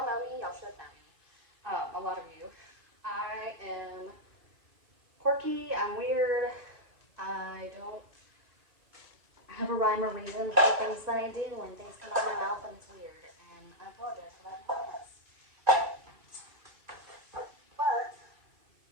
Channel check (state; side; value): late; left; 2.5 ms